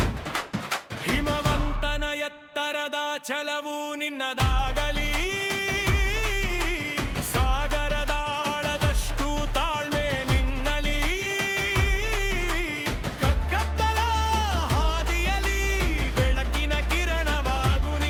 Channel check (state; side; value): identical; both; correlation 1.00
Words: ಹಿಮವಂತನ ಎತ್ತರದ ಛಲವು ನಿನ್ನದಾಗಲಿ ಸಾಗರದ ಆಳದಷ್ಟು ತಾಳ್ಮೆ ನಿನ್ನಲಿ ಕಗ್ಗತ್ತಲ ಹಾದಿಯಲಿ ಬೆಳಕಿನ ಕಿರಣವಾಗು